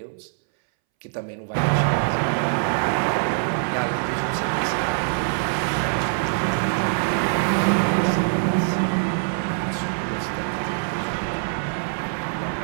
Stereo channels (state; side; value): silent; left; 63 dB below the other